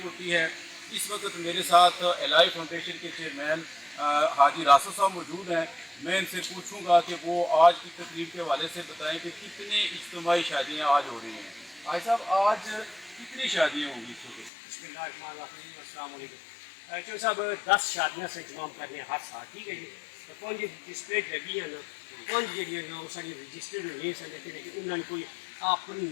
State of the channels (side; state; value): right; drops out; at 14.5 s